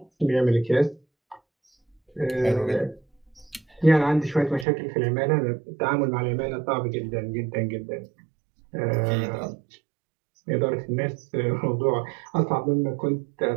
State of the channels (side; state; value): left; drops out; at 4.7 s